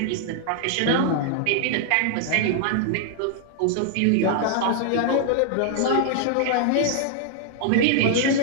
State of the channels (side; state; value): both; different; correlation 0.00